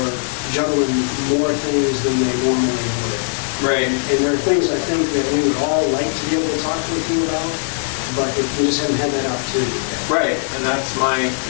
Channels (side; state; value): right; silent; digital silence